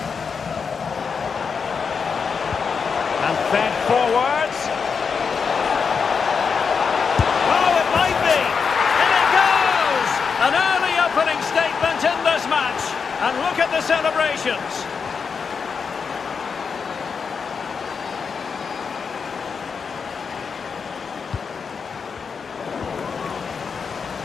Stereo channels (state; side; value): quieter; right; 5.8 dB